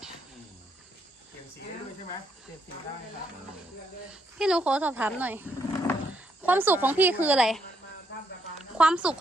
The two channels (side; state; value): both; normal; correlation 0.75